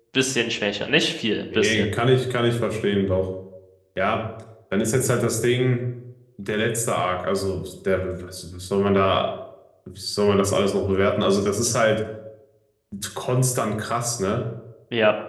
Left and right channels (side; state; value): both; identical; correlation 1.00